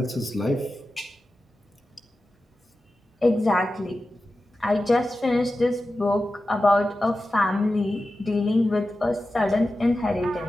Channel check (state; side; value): normal; both; correlation 0.93